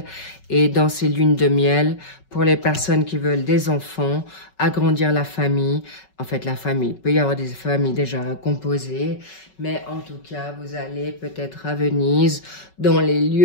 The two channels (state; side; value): late; right; 5.3 ms